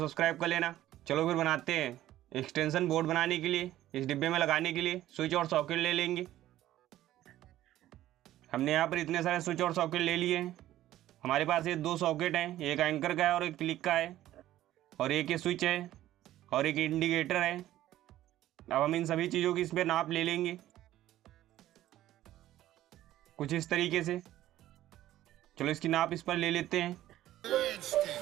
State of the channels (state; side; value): quieter; left; 13.9 dB